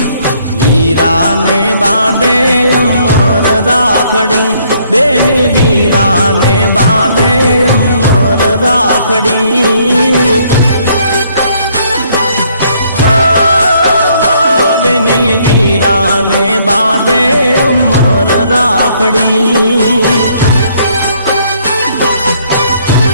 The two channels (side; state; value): both; inverted; correlation -0.66